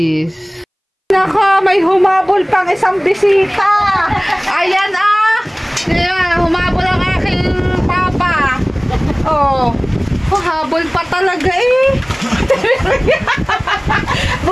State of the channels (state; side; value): identical; both; correlation 1.00